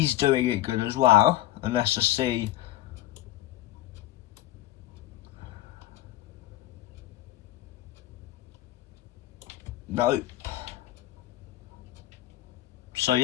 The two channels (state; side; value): quieter; right; 15.0 dB